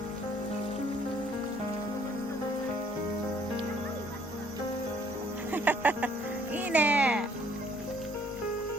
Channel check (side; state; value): both; normal; correlation 0.61